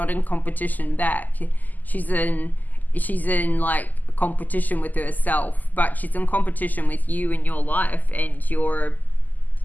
in competition back. She's in like competition with herself, but she's in competition with you in your life, and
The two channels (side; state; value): right; late; 0.083 ms